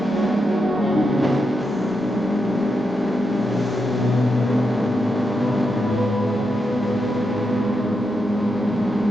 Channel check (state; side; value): normal; both; correlation 0.85